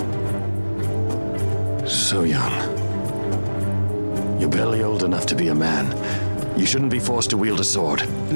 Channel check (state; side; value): inverted; both; correlation -1.00